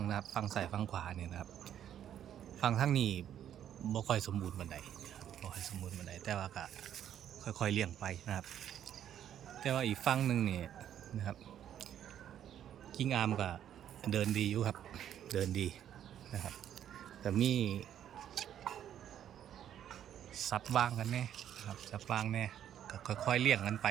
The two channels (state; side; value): quieter; left; 10.3 dB